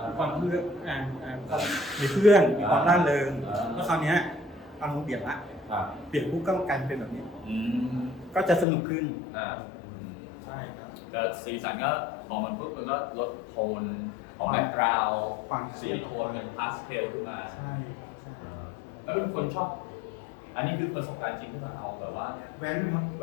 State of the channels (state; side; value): drops out; right; at 8.7 s